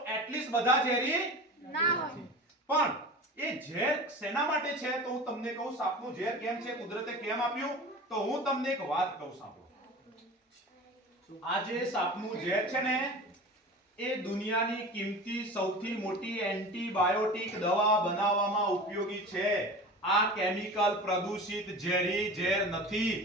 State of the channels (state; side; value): normal; both; correlation 0.34